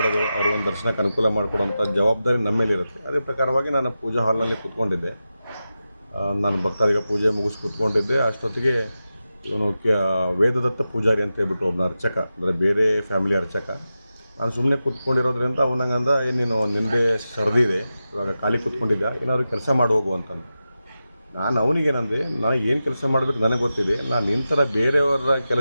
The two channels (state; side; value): inverted; both; correlation -0.92